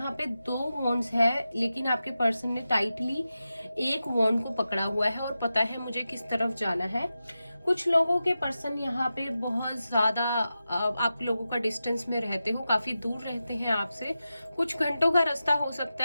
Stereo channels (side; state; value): both; inverted; correlation -0.92